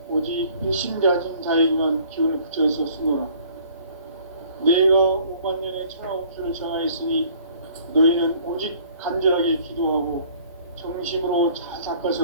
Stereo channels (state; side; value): inverted; both; correlation -0.55